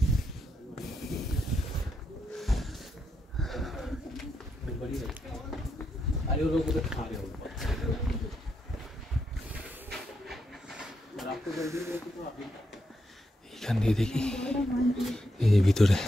এখান দিয়ে দেখি, এই যে ভিতরে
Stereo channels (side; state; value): both; normal; correlation 0.82